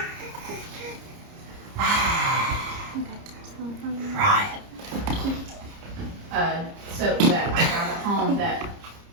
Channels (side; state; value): left; late; 30 ms